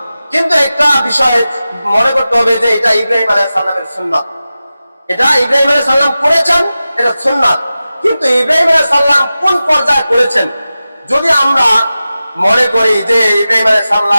কিন্তু একটা বিষয় মনে করতে হবে যে এটা ইব্রাহিম আলাইহিস সালামের সুন্নাত, এটা ইব্রাহিম আলাইহিস সালাম করেছেন, এটা সুন্নাত। কিন্তু ইব্রাহিম আলাইহিস সালাম কোন পর্যায়ে করেছেন, যদি আমরা মনে করি যে ইব্রাহিম আলাইহিস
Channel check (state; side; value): inverted; both; correlation -0.94